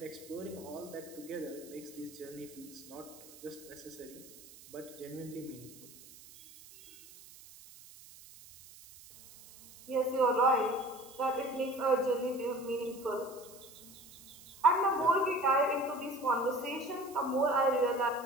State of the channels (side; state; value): right; noise; hiss, 20 dB below the sound